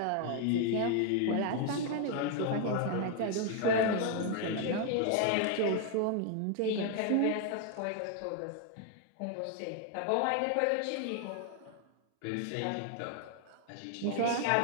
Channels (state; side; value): different; both; correlation 0.01